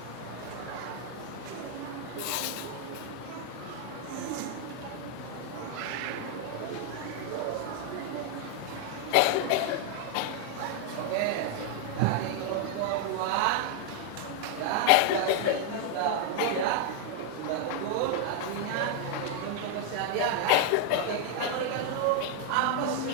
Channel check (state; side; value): different; both; correlation 0.00